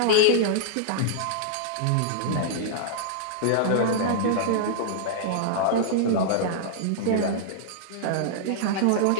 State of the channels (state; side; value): different; both; correlation -0.01